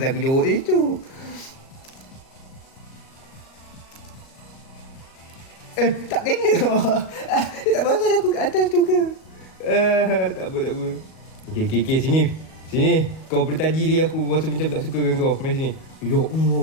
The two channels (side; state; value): right; late; 38 ms